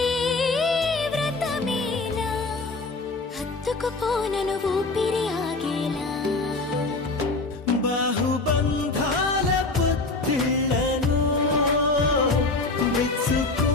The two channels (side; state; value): right; quieter; 3.4 dB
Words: వ్రతమేలా హత్తుకుపోనను ఊపిరి ఆగేలా బాహుబంధాల పొత్తిళ్లను